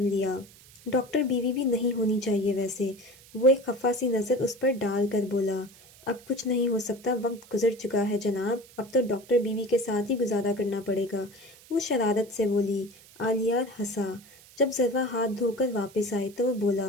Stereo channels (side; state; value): right; noise; hiss, 23 dB below the sound